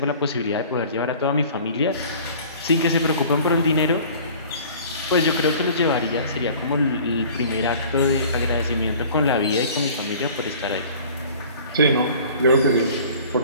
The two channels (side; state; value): both; inverted; correlation -0.47